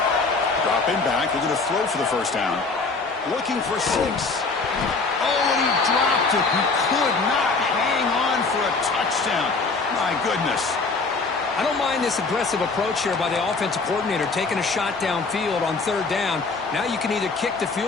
Dropping back, they're going to throw for the first down. Looking for 6. Oh, and he dropped it. He could not hang on for a touchdown. My goodness. I don't mind this aggressive approach here by the offensive coordinator, taking a shot downfield on third down. Now you can either kick the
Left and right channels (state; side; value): quieter; right; 4.1 dB